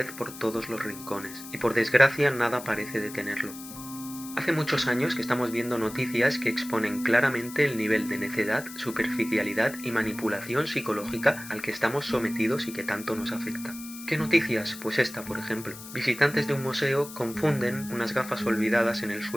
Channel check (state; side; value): noise; left; hiss, 14 dB below the sound